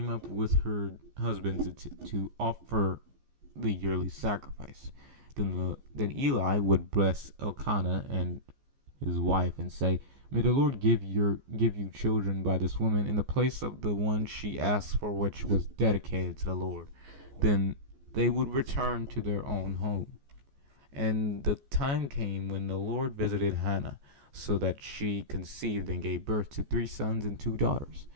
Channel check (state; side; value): late; left; 14 ms